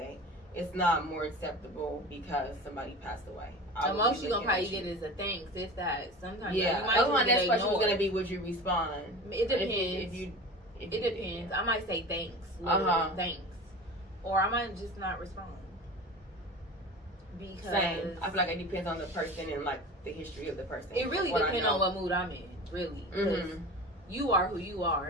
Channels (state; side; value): normal; both; correlation 0.34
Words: It's not more acceptable because somebody passed away. The most you're gonna probably get is a thanks, if that. Sometimes that was my next question was gonna be, would you respond? It depends. It depends. I might say thanks. Thanks. Or I might just not respond. Because same. I feel like it depends on the person and like the history of the person. It really depends on what mood I'm in, really. You are who you are,